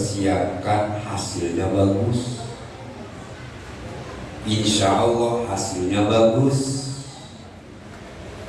hasilnya bagus. Insya Allah hasilnya bagus.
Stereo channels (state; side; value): identical; both; correlation 1.00